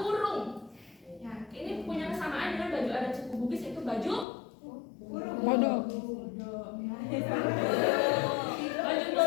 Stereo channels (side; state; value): right; drops out; at 4.2 s